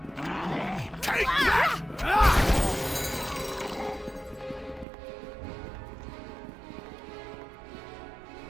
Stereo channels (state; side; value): drops out; left; at 4.9 s